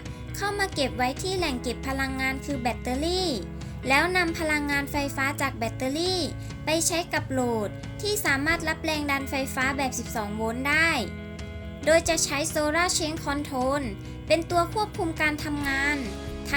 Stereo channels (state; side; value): identical; both; correlation 1.00